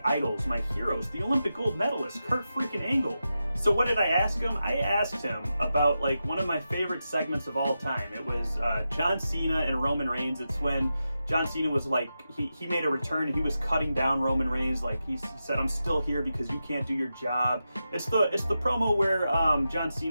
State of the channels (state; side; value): inverted; both; correlation -0.90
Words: idols, my heroes, the Olympic gold medalist, Kurt freaking Angle. So what did I ask him? I asked him about like one of my favorite segments of all time. It was John Cena and Roman Reigns. It's when John Cena was like, he made a return and he was cutting down Roman Reigns. Like he said, I'm still here because you can't do your job. It's the promo where John